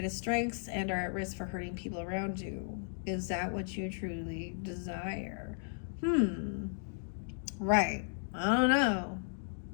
strengths and are at risk for hurting people around you. Is that what you truly desire? Right. I don't know.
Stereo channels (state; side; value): silent; right; digital silence